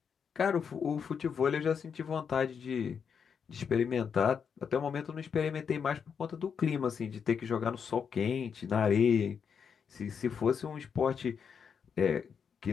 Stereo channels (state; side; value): quieter; right; 6.8 dB